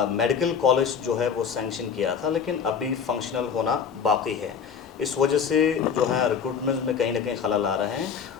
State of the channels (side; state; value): right; quieter; 6.9 dB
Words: मेडिकल कॉलेज जो है वो सैंक्शन किया था, लेकिन अभी फंक्शनल होना बाकी है। इस वजह से जो है रिक्रूटमेंट में कहीं ना कहीं खलल आ रहे हैं